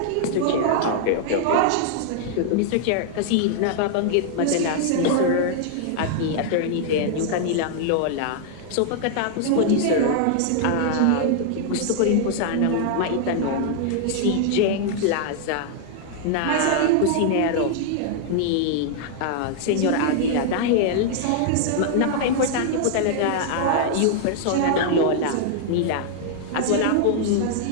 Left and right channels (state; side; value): different; both; correlation -0.01